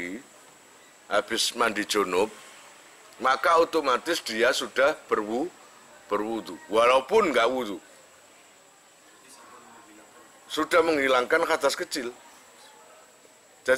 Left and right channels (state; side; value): identical; both; correlation 1.00